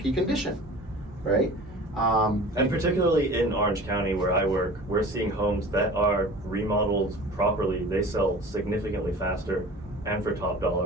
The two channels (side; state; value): both; normal; correlation 0.40